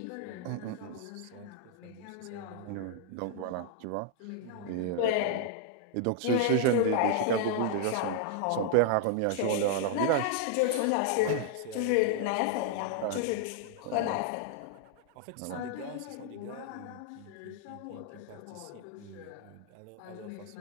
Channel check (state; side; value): different; both; correlation 0.00